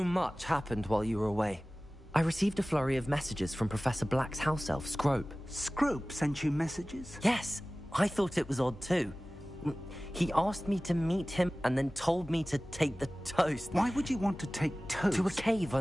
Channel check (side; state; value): both; normal; correlation 0.97